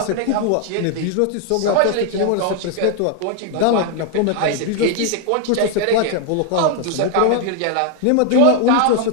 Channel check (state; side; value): different; both; correlation 0.00